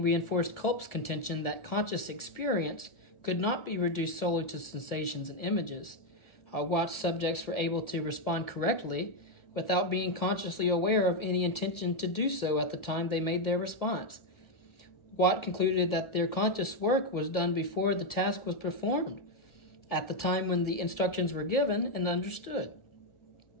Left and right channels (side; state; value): right; late; 1.4 ms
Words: reinforced Culp's contention that conscious experience could not be reduced solely to sensations and images. Watt's subjects were able to respond correctly without being consciously aware of any intention to do so at the time they made their response. Watt concluded that their conscious work was done before the task was performed, at the time when the instructions were given and understood.